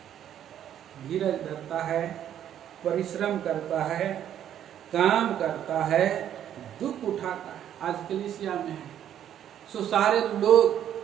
धीरज धरता है, परिश्रम करता है, काम करता है, दुख उठाता है। आज कलीसिया में है सो सारे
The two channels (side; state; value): left; quieter; 10.4 dB